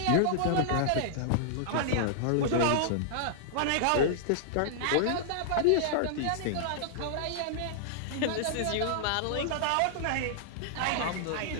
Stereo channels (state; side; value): different; both; correlation -0.01